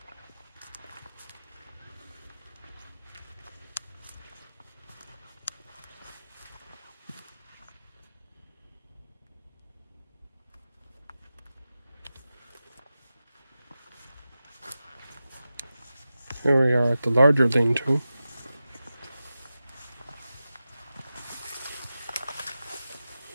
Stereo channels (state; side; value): inverted; both; correlation -0.93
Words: Here we are at the larger lean-to.